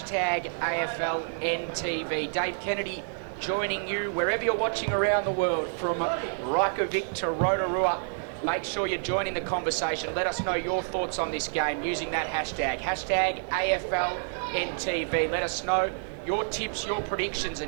AFLNTv. Dave Kennedy joining you wherever you're watching around the world, from Reykjavik to Rotorua. Make sure you're joining the conversation. Let us know your thoughts on this game using that hashtag AFLNTv. Let us know your tips, your predictions,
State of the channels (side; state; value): left; silent; digital silence